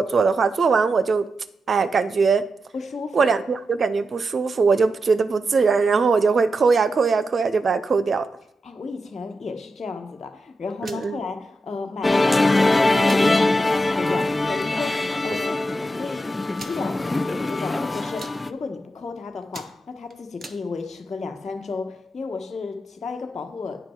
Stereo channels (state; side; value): normal; both; correlation 0.88